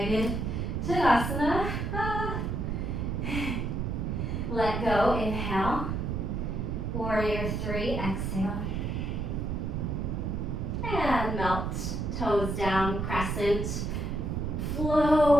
Tadasana. Let go, inhale. Warrior three, exhale. And melt, toes down, crescent.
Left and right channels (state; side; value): noise; right; rumble, 1 dB below the sound